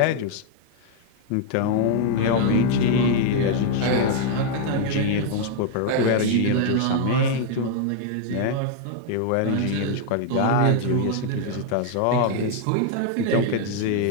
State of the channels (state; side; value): different; both; correlation 0.00